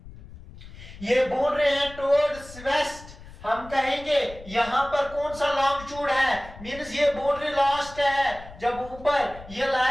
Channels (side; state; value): left; noise; rumble, 17 dB below the sound